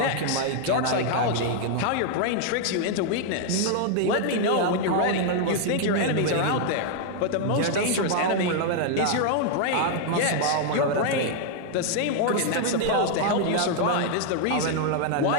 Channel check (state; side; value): different; both; correlation 0.00